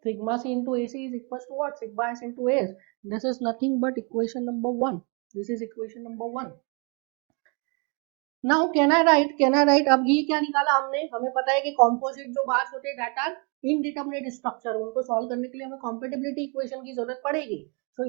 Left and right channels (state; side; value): quieter; left; 33.2 dB